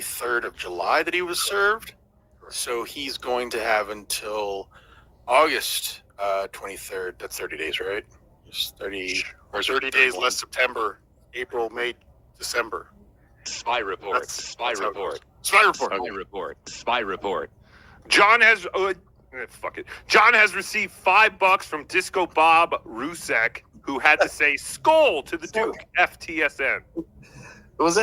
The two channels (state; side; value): identical; both; correlation 1.00